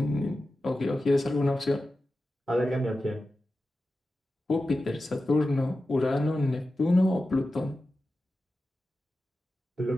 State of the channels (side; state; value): both; normal; correlation 0.93